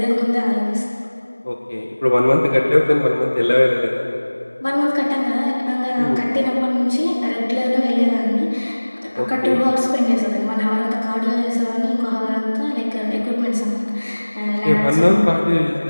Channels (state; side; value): inverted; both; correlation -1.00